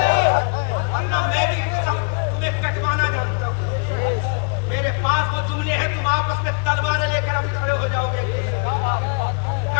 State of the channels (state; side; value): quieter; right; 36.4 dB